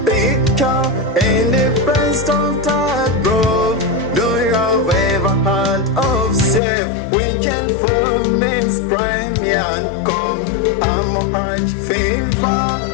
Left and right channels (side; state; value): right; drops out; at 6.6 s